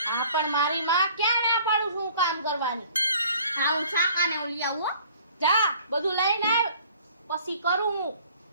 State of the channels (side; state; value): both; inverted; correlation -0.53